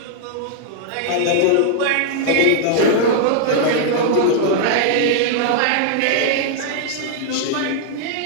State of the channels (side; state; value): both; different; correlation -0.01